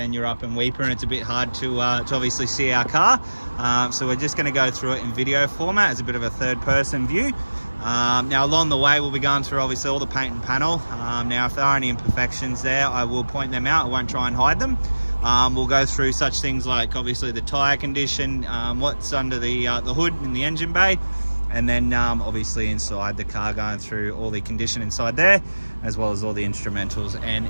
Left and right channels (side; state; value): both; inverted; correlation -1.00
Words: you're up in Weeper and it's a bit hard to obviously see our car. So we're just going to go through it in video format as a bit of a third-person view. Now along the way we'll be going through obviously all the paint and panel. Now if there are any imperfections there, I will point them out. I won't try and hide them. We'll go through such things like obviously the tyre condition, what's under the hood in the engine bay, and then obviously inside the car, going through all the condition inside there, as well as all the instrumentals and